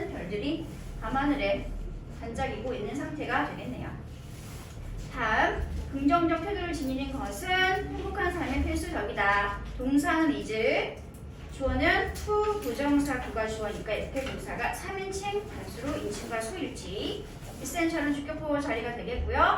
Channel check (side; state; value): both; identical; correlation 1.00